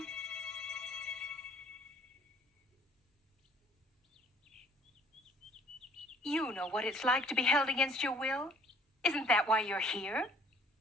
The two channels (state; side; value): normal; both; correlation 0.57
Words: You know what it's like to be held against your will? Isn't that why you're here?